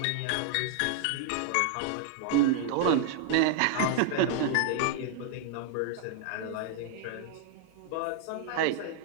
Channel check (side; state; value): both; different; correlation 0.00